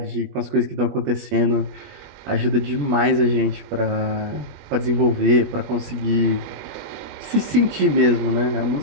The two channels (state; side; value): late; left; 20 ms